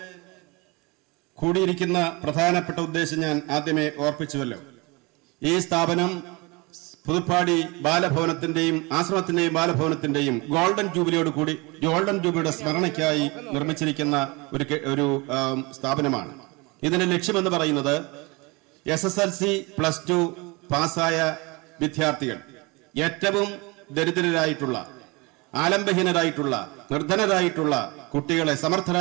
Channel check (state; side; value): quieter; left; 26.3 dB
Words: കൂടിയിരിക്കുന്ന പ്രധാനപ്പെട്ട ഉദ്ദേശം ഞാൻ ആദ്യമേ ഓർപ്പിച്ചുവല്ലോ. ഈ സ്ഥാപനം പുതുപ്പാടി ബാലഭവനത്തിന്റെയും ആശ്രമത്തിന്റെയും ബാലഭവനത്തിന്റെയും ഗോൾഡൻ ജൂബിലിയുടെ സ്മരണയ്ക്കായി നിർമ്മിച്ചിരിക്കുന്ന ഒരു സ്ഥാപനമാണ്. ഇതിന്റെ ലക്ഷ്യമെന്ന് പറയുന്നത് SSLC +2 പാസ്സായ വിദ്യാർത്ഥികൾ, ഏറ്റവും ദരിദ്രരായിട്ടുള്ള, ആലംബഹീനരായിട്ടുള്ള, നിർധനരായിട്ടുള്ള കുട്ടികളെ,